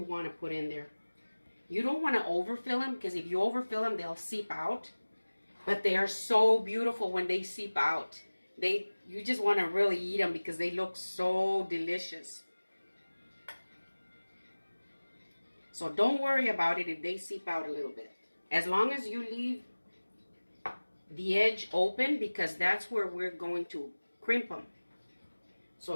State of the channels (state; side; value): inverted; both; correlation -1.00